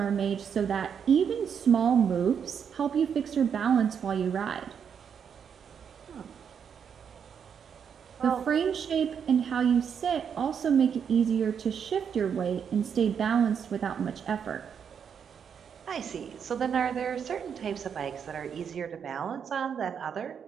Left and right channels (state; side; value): quieter; left; 7.4 dB